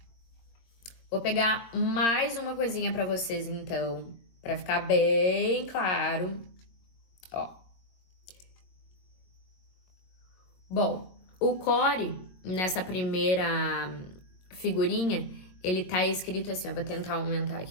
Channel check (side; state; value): right; late; 22 ms